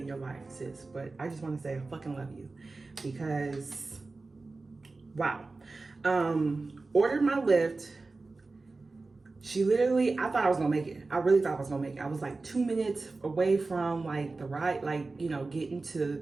in your life, sis, but I just want to say I fucking love you because, wow. Ordered my Lyft. She literally, I thought I was gonna make it. I really thought I was gonna make it. I was like 2 minutes away from like the ride, like, you know, getting to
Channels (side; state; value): left; quieter; 3.6 dB